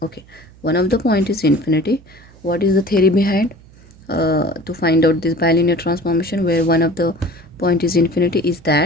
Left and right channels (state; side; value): noise; right; hum, 25 dB below the sound